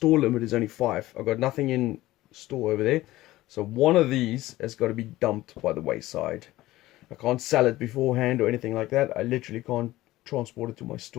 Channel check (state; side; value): quieter; right; 16.9 dB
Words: limit is only 5. I've got nothing in store over there. So one of these has got to be dumped by the wayside. I can't sell it beforehand or anything like that. I literally can't transport it to my